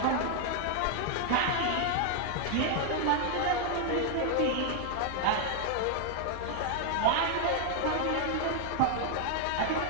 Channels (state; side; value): different; both; correlation 0.00